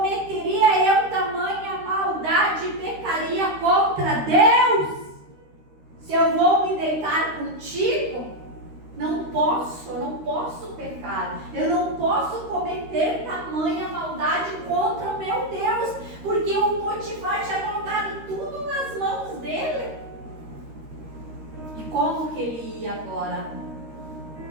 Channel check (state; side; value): late; left; 13 ms